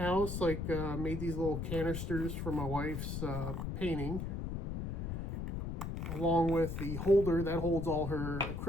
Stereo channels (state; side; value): noise; left; rumble, 3 dB below the sound